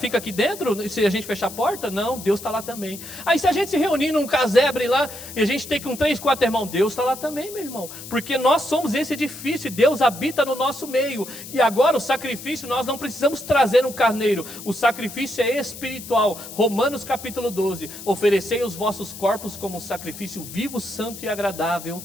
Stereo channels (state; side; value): noise; left; hiss, 13 dB below the sound